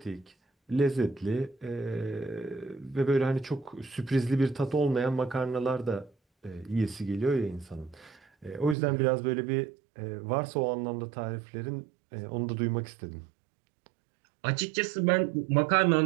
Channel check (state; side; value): drops out; left; at 8.8 s